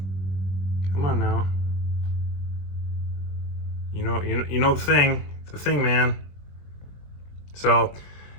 Come on now. You know the thing, man. So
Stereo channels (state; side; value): late; right; 21 ms